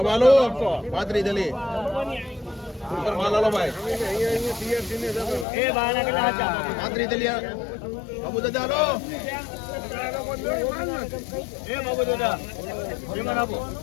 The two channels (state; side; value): drops out; right; at 5.5 s